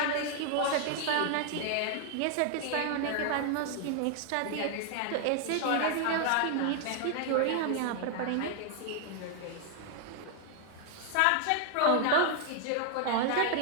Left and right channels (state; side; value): different; both; correlation 0.00